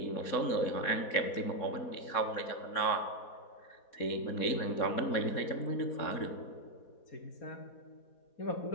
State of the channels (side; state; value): right; late; 4.2 ms